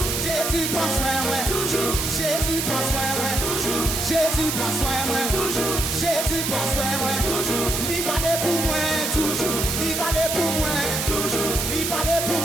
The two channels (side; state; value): right; noise; hiss, 1 dB below the sound